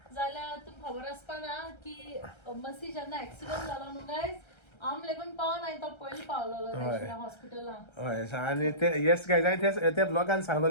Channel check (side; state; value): right; late; 1.3 ms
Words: जाल्यार तुमकां खबर आसपा ना की मसी जेन्ना एक्सिडेंट जालो न्हू गायज आम लेगून पावन हांवें तो पयली पावलोलो हॉस्पिटलांत हय आनी ते येस गायज हांवें ते ब्लॉगान